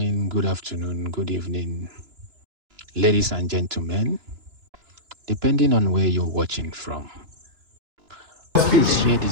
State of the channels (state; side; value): late; left; 2.9 ms